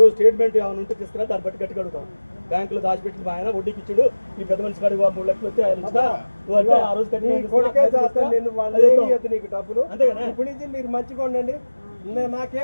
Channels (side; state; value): both; inverted; correlation -1.00